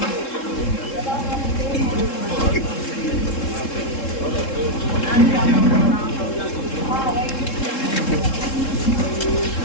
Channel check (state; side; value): late; right; 3.7 ms